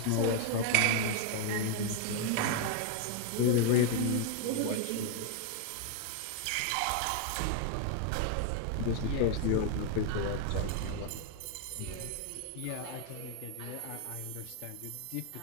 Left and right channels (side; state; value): both; different; correlation 0.00